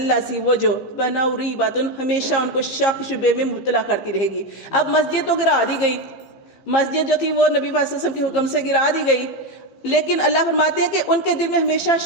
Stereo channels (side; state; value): right; late; 15 ms